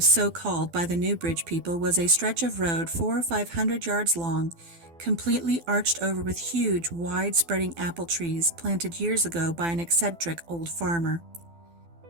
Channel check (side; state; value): left; late; 12 ms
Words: so called by the Newbridge people, was a stretch of road 400 or 500 yards long, completely arched over with huge, wide-spreading apple trees planted years ago by an eccentric old farmer.